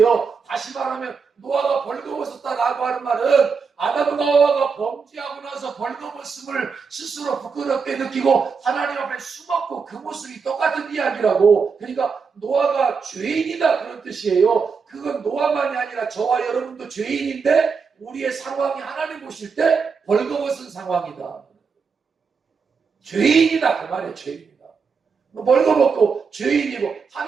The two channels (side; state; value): left; quieter; 5.5 dB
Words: 다시 말하면 노아가 벌거벗었다라고 하는 말은 아담과 하와가 범죄하고 나서 벌거벗음을 스스로 부끄럽게 느끼고 하나님 앞에 숨었고 그 모습이 똑같은 이야기라고. 그러니까 노아가 죄인이다 그런 뜻이에요. 그건 노아만이 아니라 저와 여러분도 죄인인데 우리의 상황이 하나님 보실 때 벌거벗은 상황이다. 죄인이다 그 말이에요. 죄인이다. 벌거벗고 죄인이고